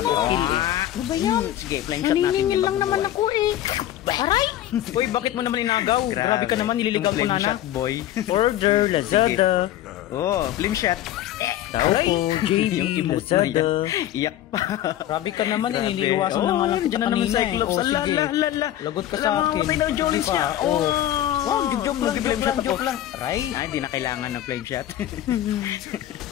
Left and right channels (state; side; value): quieter; right; 12.7 dB